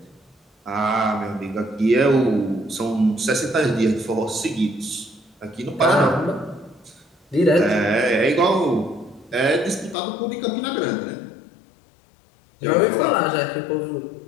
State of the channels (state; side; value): drops out; right; at 10.0 s